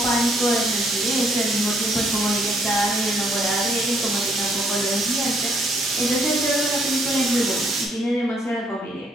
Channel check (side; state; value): both; normal; correlation 0.68